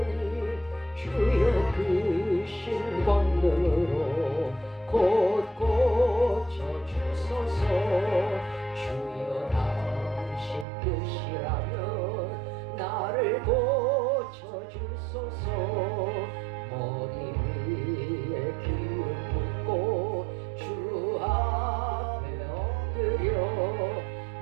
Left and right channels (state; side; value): drops out; left; at 10.7 s